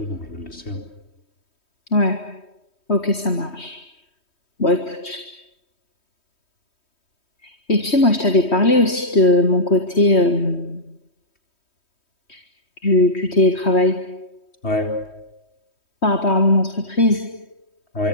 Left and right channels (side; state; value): right; late; 3.2 ms